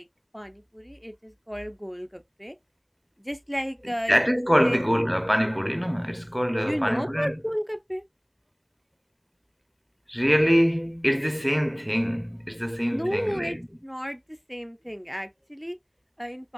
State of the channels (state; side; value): identical; both; correlation 1.00